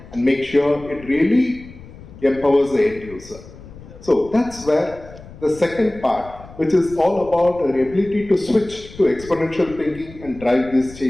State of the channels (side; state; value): left; noise; rumble, 18 dB below the sound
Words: and make sure it really empowers the end user. So that's where the second part, which is all about our ability to switch to exponential thinking and drive these